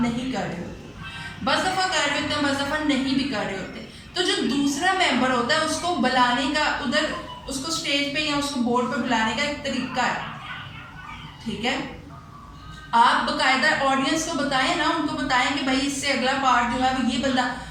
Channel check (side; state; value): both; identical; correlation 1.00